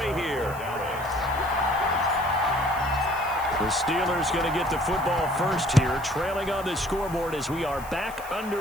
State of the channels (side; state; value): right; noise; hiss, 18 dB below the sound